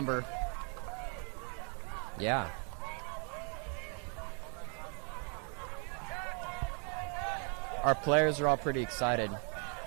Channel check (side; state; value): left; quieter; 39.7 dB